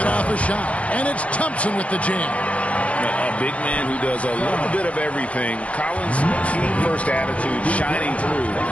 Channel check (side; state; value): right; late; 0.064 ms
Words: off a shot. And it's Thompson with the jam. A big man who does a little bit of everything. Collins' team-first attitude shining through